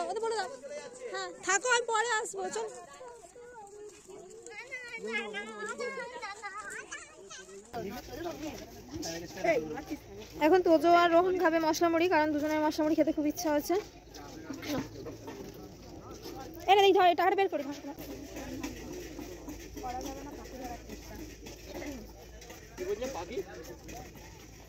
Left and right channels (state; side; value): identical; both; correlation 1.00